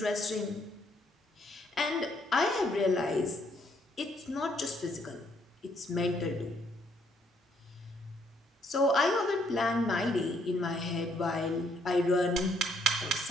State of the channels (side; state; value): both; normal; correlation 0.70